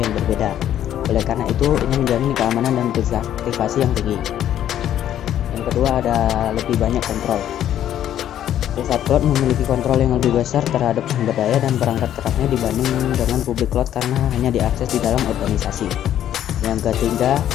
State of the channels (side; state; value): right; quieter; 11.1 dB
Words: yang berbeda. Oleh karena itu, ini menjamin keamanan dan privasi yang tinggi. Yang kedua ada lebih banyak kontrol. Private cloud memiliki kontrol yang lebih besar terhadap sumber daya dan perangkat kerasnya dibanding dengan public cloud karena hanya diakses di dalam organisasi. Yang ketiga,